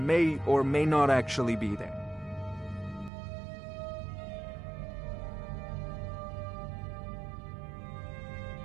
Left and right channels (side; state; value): left; drops out; at 3.1 s